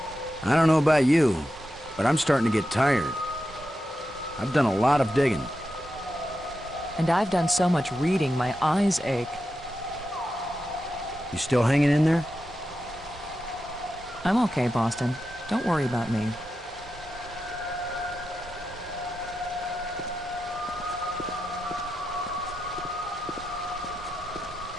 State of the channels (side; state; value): both; normal; correlation 0.89